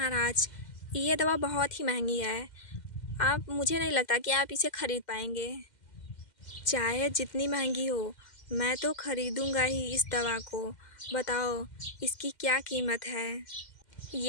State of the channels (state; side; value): late; right; 2.1 ms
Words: ये दवा बहुत ही महंगी है, मुझे नहीं लगता कि आप इसे ख़रीद पाएंगे। चाहे जितनी महंगी हो, मैं तो ख़रीदूँगा ही इस दवा को। बताओ इसकी क्या कीमत है?